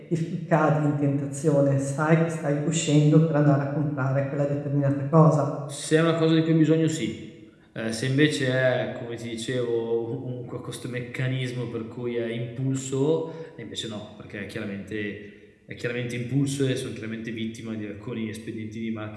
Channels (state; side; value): identical; both; correlation 1.00